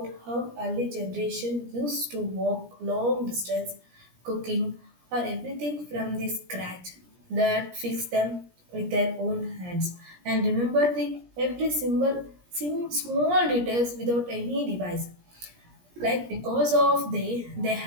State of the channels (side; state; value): left; late; 17 ms